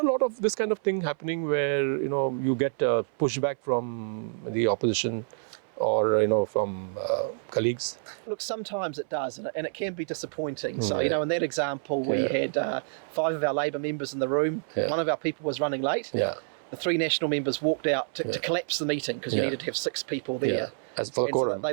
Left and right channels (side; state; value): left; silent; 59 dB below the other